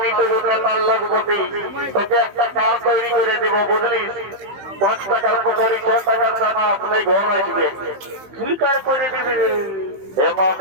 তো ওটা তার লগবতী তোকে একটা কাজ তৈরি করে দেবো বুঝলিস 5 টাকার পকড়ি 6 টাকার দানা আপনি ঘর আসবে কি কাজ করে দিবি হে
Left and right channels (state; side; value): late; left; 15 ms